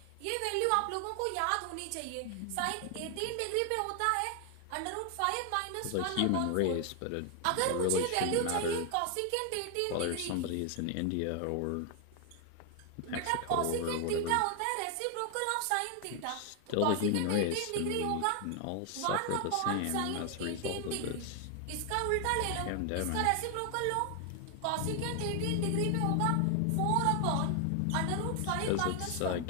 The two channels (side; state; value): both; different; correlation 0.00